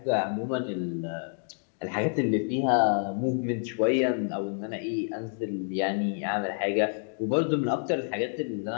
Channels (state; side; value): silent; right; 59 dB below the other